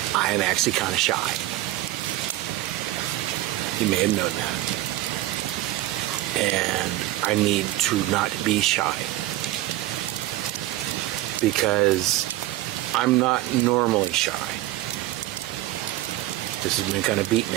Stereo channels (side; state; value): left; quieter; 15.6 dB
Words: I am actually kind of shy. You may have known that. And I need to not be shy. Because I'm not normally shy. This has been kind of beaten